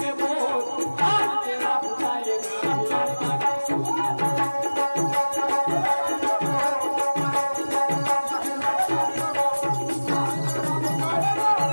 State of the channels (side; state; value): both; inverted; correlation -1.00